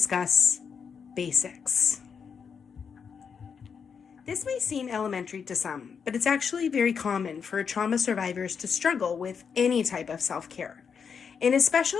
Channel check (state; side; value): quieter; right; 6.4 dB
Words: basics. This may seem elementary to some, but it's actually very common for trauma survivors to struggle with any type of self-care. An